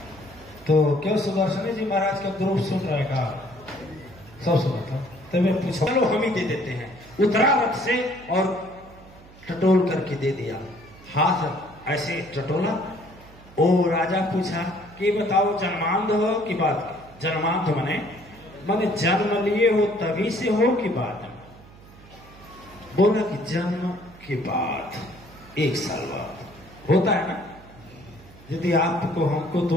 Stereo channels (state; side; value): noise; right; hum, 22 dB below the sound